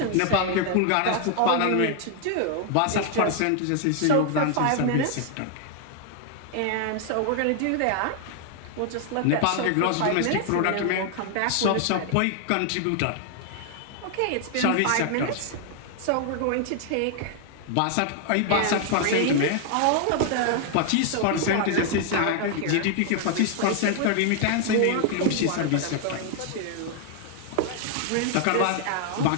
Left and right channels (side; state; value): both; different; correlation 0.00